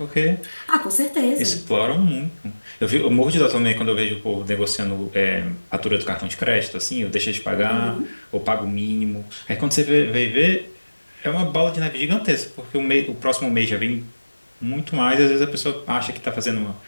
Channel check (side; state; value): both; inverted; correlation -1.00